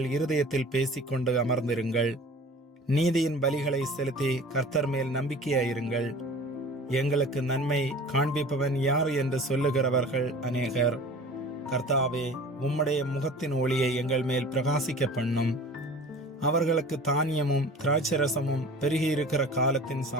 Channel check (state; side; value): normal; both; correlation 0.42